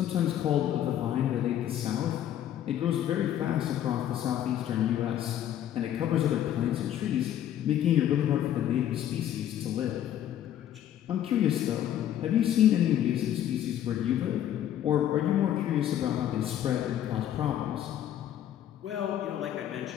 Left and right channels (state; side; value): quieter; right; 11.1 dB